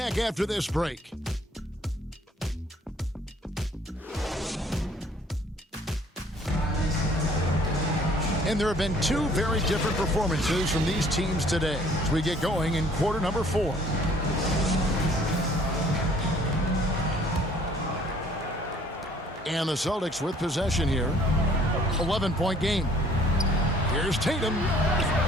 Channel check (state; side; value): normal; both; correlation 0.58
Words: after this break. And there have been 2 very different performances from these teams today as we get going in quarter number 4. And the Celtics with possession here. 11-point game. Here's Tatum.